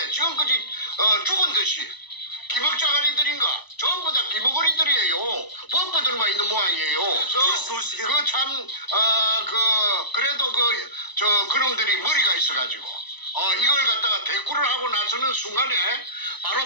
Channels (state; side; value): late; right; 1.0 ms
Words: 지금까지 죽은 듯이 기먹자가리들인가 전부 다 기먹거리들이에요. 범퍼들만 있는 모양이에요. 그래도 그놈들이 머리가 있어가지고 이걸 갖다가 대꾸를 하고 나서는 순간에